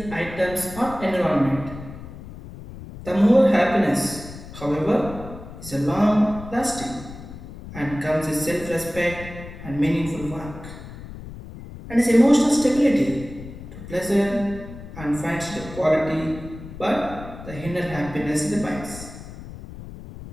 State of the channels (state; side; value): noise; left; rumble, 13 dB below the sound